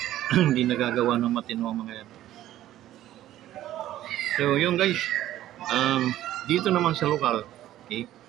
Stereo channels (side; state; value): left; quieter; 13.5 dB